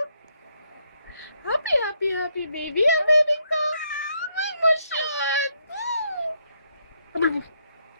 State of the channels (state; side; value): inverted; both; correlation -0.76